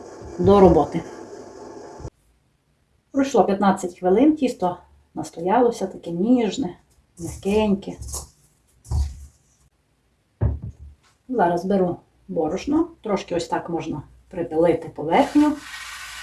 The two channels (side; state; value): both; identical; correlation 1.00